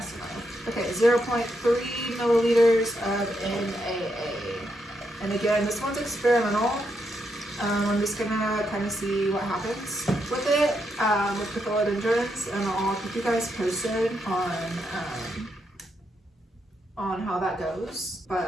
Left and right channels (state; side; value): normal; both; correlation 0.81